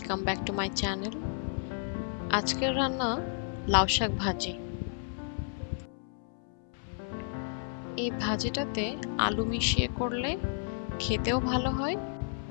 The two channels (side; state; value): right; silent; 56 dB below the other